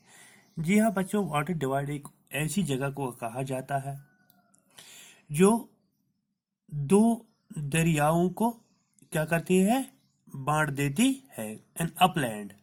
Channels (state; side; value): identical; both; correlation 1.00